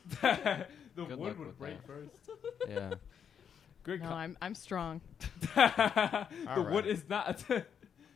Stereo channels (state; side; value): quieter; right; 7.8 dB